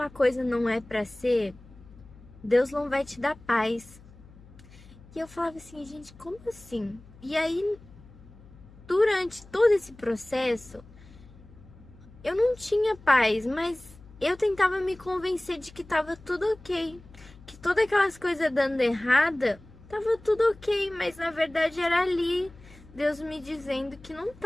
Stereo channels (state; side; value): noise; left; hum, 22 dB below the sound